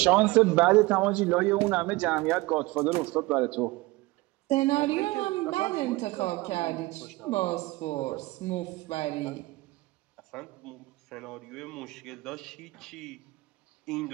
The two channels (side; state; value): left; quieter; 21.1 dB